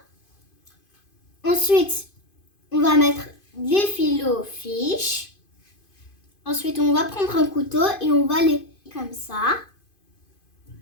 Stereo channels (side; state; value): right; late; 2.5 ms